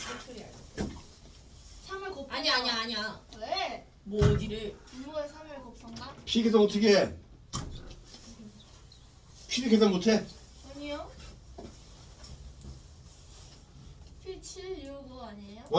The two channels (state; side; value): identical; both; correlation 1.00